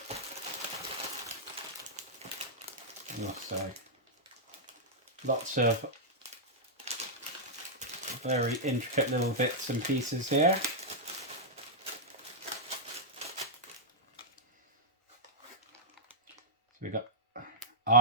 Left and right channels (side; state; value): both; normal; correlation -0.09